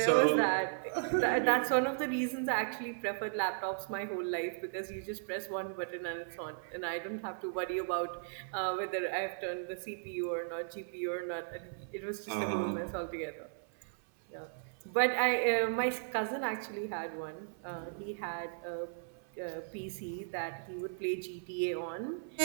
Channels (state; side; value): silent; left; 54 dB below the other